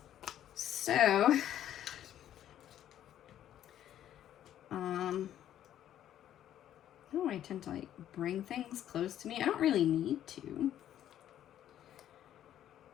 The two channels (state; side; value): quieter; right; 11.3 dB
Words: So, oh, I tend to like bring things close to me. I don't really need to.